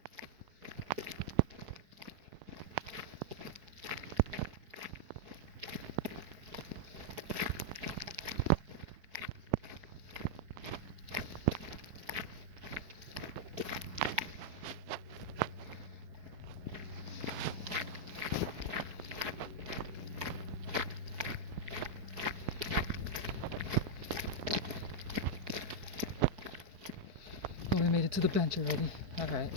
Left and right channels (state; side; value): late; left; 4.7 ms